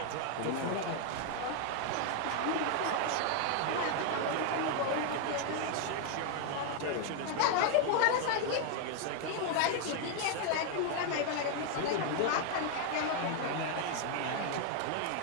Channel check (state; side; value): different; both; correlation 0.00